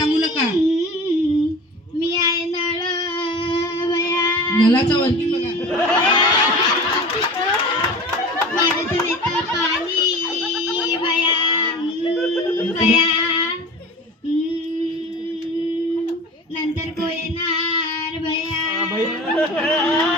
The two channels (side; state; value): both; normal; correlation 0.37